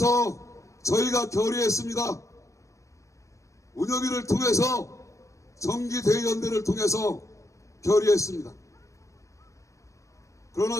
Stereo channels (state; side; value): late; right; 0.15 ms